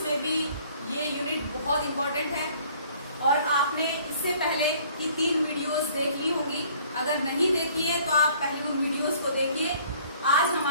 में भी ये यूनिट बहुत इम्पोर्टेंट है और आपने इससे पहले की 3 वीडियोस देख ली होंगी। अगर नहीं देखी है तो आप पहले उन वीडियोस को देखिए। आज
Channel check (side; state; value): both; inverted; correlation -0.56